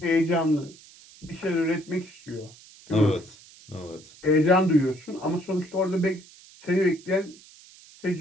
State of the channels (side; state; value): right; noise; hiss, 23 dB below the sound